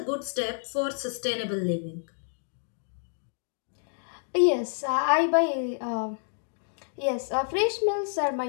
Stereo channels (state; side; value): silent; right; digital silence